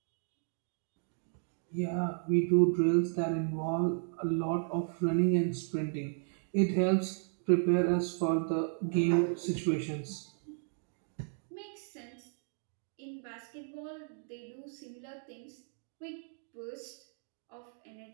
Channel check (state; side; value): silent; left; digital silence